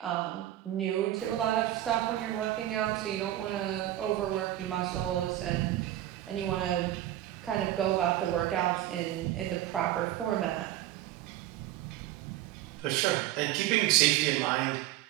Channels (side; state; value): left; quieter; 13.8 dB